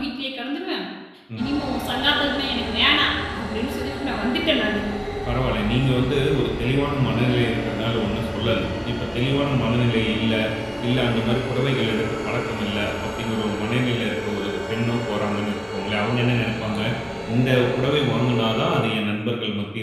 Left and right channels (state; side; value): identical; both; correlation 1.00